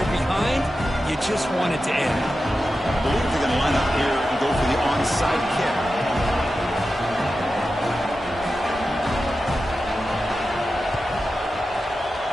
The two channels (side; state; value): both; normal; correlation 0.92